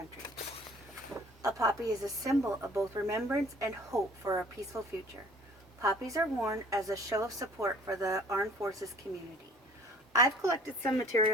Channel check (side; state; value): both; normal; correlation 0.50